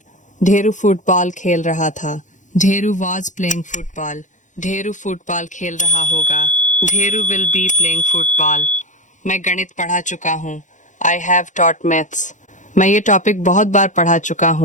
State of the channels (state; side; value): late; right; 0.36 ms